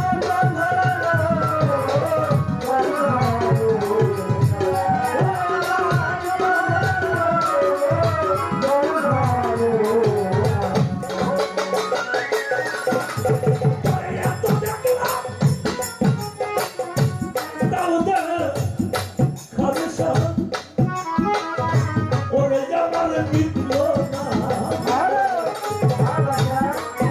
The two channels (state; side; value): identical; both; correlation 1.00